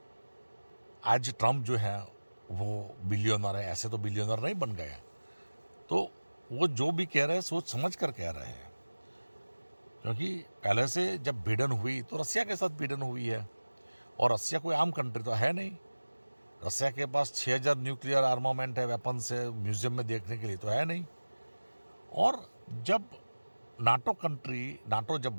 आज ट्रंप जो है वो बिलियनर है, ऐसे तो बिलियनर नहीं बन गए। तो वो जो भी कह रहे हैं सोच समझ कर कह रहे हैं, क्योंकि पहले से जब भिड़न हुई तो रसिया के साथ भिड़न हुई है, और रसिया कोई आम कंट्री तो है नहीं। रसिया के पास 6000 न्यूक्लियर आर्मामेंट है, वेपन्स है, म्यूजियम में देखने के लिए तो है नहीं। और जब नाटो जब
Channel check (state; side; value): inverted; both; correlation -1.00